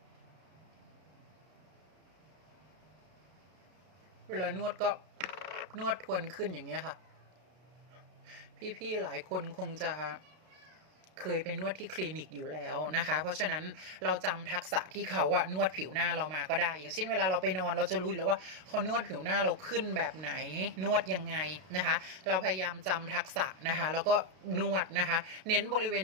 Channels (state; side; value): late; left; 32 ms